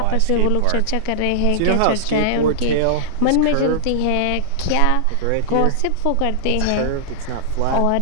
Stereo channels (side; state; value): both; different; correlation -0.01